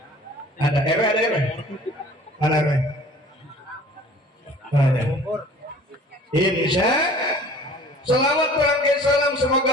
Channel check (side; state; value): both; normal; correlation 0.48